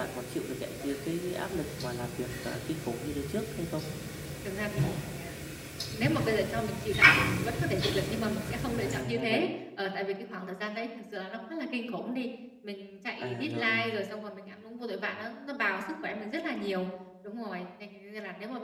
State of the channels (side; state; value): both; identical; correlation 1.00